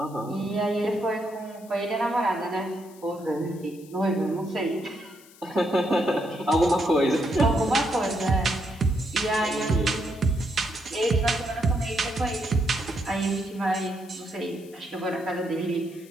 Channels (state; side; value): noise; left; hiss, 24 dB below the sound